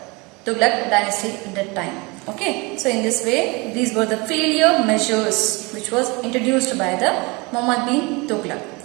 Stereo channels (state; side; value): quieter; left; 26.6 dB